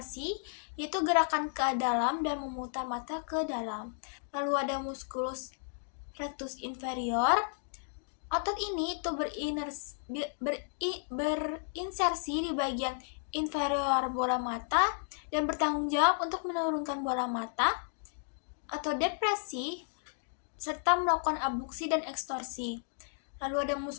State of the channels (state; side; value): silent; right; digital silence